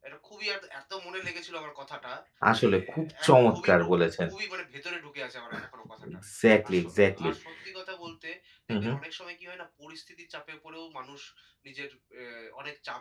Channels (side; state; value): both; identical; correlation 1.00